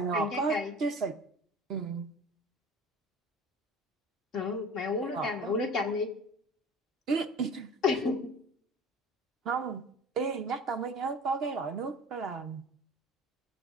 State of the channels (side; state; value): both; normal; correlation 0.41